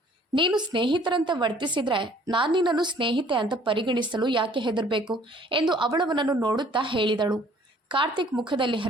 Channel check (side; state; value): both; normal; correlation 0.56